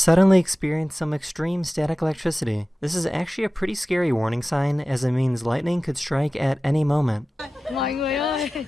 experience some extreme static electricity. This is actually a pretty scary warning sign, as it means lightning could strike at any moment. Mọi người ơi,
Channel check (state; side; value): normal; both; correlation 0.96